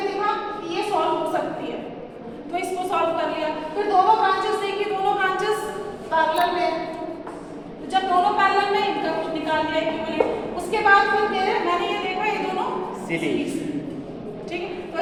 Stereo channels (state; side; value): identical; both; correlation 1.00